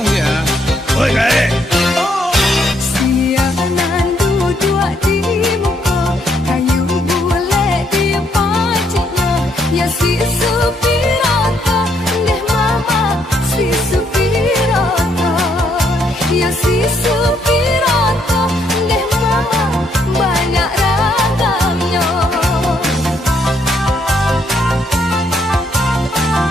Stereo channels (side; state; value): both; normal; correlation 0.72